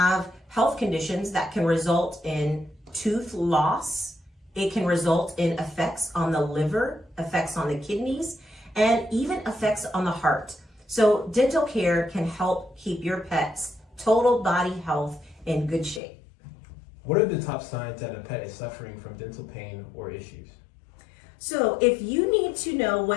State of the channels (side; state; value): right; drops out; at 16.0 s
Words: health conditions that can result in tooth loss. It can result in effects on the liver, effects on the kidneys, and even effects on the heart. So dental care can help keep your pet's total body health in good shape. What are the top signs that a pet is suffering from dental pain or issues? So if you need to know